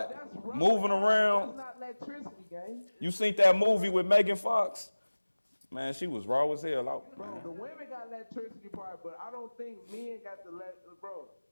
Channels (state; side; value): inverted; both; correlation -1.00